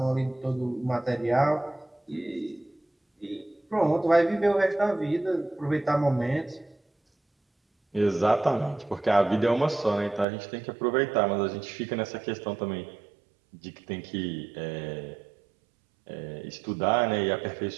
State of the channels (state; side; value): drops out; left; at 10.2 s